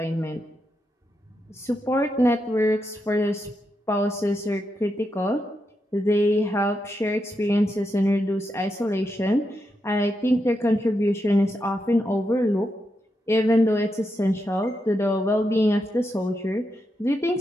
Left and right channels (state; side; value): normal; both; correlation 0.84